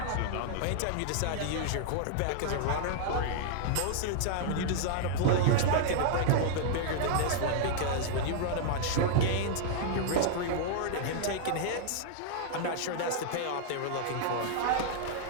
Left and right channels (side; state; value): both; different; correlation -0.01